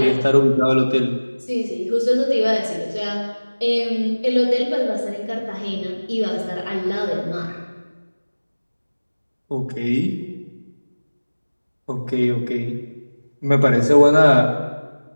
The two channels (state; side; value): inverted; both; correlation -1.00